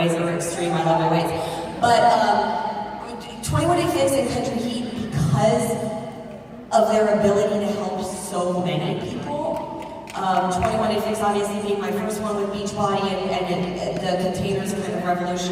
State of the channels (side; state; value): both; identical; correlation 1.00